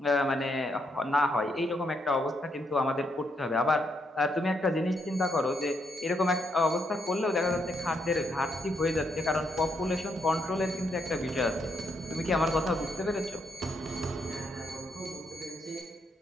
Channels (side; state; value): both; normal; correlation 0.77